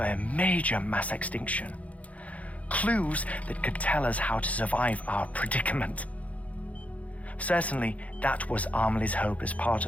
major mass extinction. Clues that could tell us how to survive our predicament. Certainly, that was Amelie's hope as part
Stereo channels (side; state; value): right; late; 0.067 ms